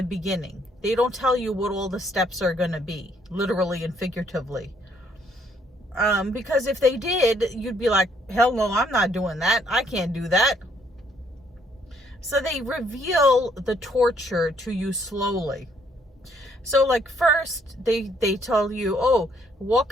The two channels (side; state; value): both; normal; correlation 0.68